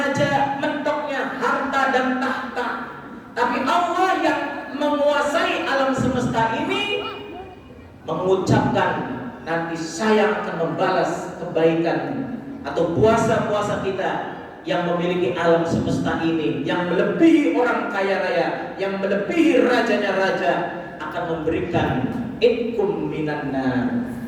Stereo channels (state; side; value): identical; both; correlation 1.00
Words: mentoknya harta dan tahta. Tapi Allah yang menguasai alam semesta ini mengucapkan nanti saya akan membalas kebaikan atau puasa-puasa kita yang memiliki alam semesta ini, yang melebihi orang kaya raya, yang melebihi rajanya raja, akan memberikan itkum minan nar.